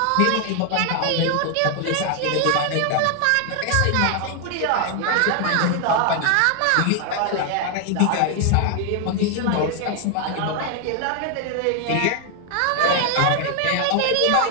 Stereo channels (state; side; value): different; both; correlation 0.00